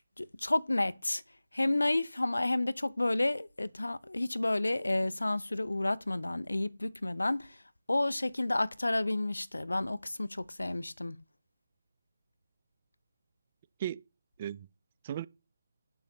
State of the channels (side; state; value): both; inverted; correlation -0.98